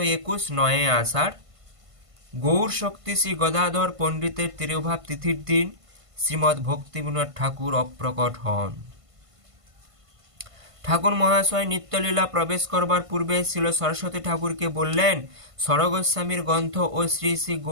9 আষাঢ় গৌর শক্তি শ্রী গদাধর পণ্ডিতের তিরোভাব তিথির দিন শ্রীমদ্ ভক্তিবিনোদ ঠাকুর অপ্রকট হন। ঠাকুর মহাশয় নিত্যলীলা প্রবেশ করবার পূর্বে ছিল সরস্বতী ঠাকুরকে বললেন, সরগোস্বামীর গ্রন্থ ও শ্রী শ্রী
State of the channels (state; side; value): late; left; 1.5 ms